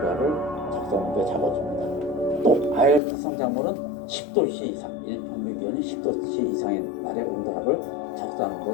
적산 온도에 잡아줍니다. 또 아열기성 작물은 10도씨 이상, 일평균 기온이 10도씨 이상의 날의 온도합을 적산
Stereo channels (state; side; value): drops out; right; at 3.0 s